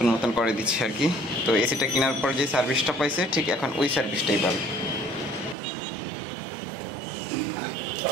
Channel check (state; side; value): drops out; left; at 5.6 s